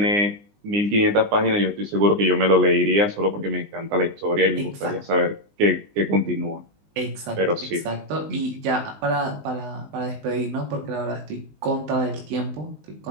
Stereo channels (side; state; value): left; late; 20 ms